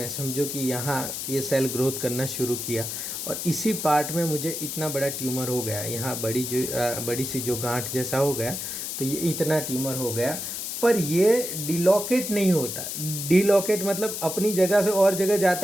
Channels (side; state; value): left; noise; hiss, 5 dB below the sound